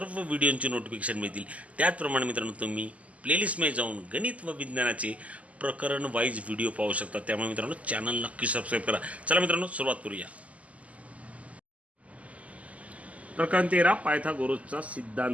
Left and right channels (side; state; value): left; late; 0.069 ms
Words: व्हिडिओंची नोटिफिकेशन मिळतील. त्याचप्रमाणे मित्रांनो, तुम्ही प्लेलिस्टमध्ये जाऊन गणित व विज्ञानाचे प्रकरण वाईज व्हिडिओ पाहू शकता. त्यामुळे मित्रांनो, चॅनल नक्की सबस्क्राईब करा. चला मित्रांनो, सुरुवात करूया. प्रकरण 13, पायथागोरसचा